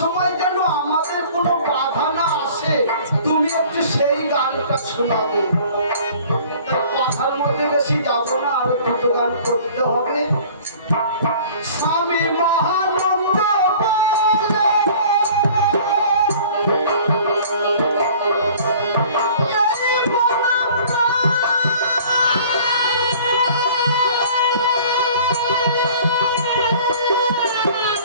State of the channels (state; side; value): inverted; both; correlation -0.49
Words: যেন আমাদের কোনো বাধা না আসে, তুমি একটু সেই গানটা শোনাবে। তাই কথার মধ্যে বেশি যাব না, আরো দুটো গান করতে হবে। স্বামী মহানন্দ বলে